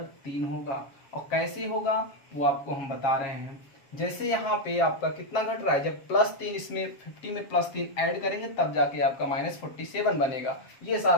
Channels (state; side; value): late; right; 7.6 ms